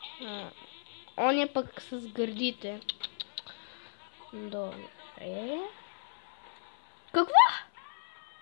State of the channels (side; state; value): right; silent; 55 dB below the other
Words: Он е пък с гърдите. Добре. Какво?